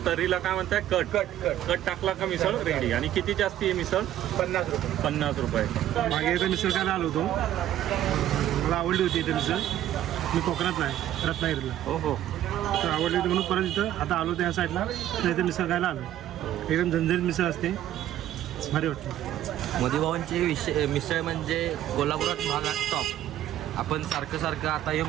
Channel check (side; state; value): left; quieter; 12.4 dB